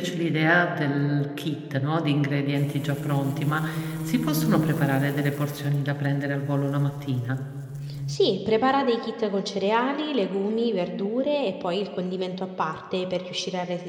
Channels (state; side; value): identical; both; correlation 1.00